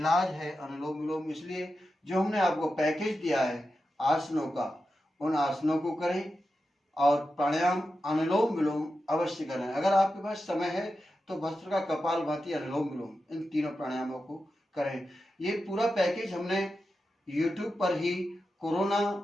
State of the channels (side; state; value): both; normal; correlation 0.90